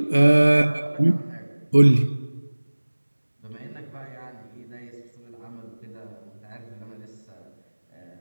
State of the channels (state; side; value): inverted; both; correlation -1.00